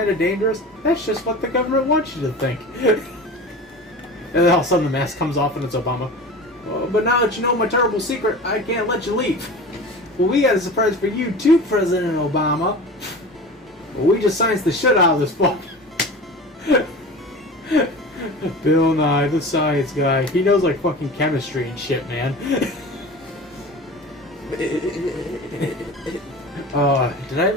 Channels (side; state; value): both; normal; correlation 0.35